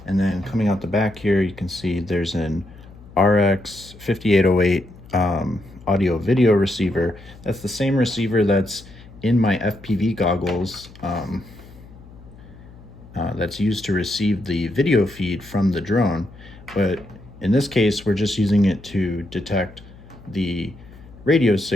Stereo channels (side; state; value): left; noise; hum, 20 dB below the sound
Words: and then coming out the back here you can see there's an RX 5808 audio video receiver. That's the same receiver that's in my FPV goggles, that's used to receive the video feed from the drone, but in this case we're just using it to detect the radio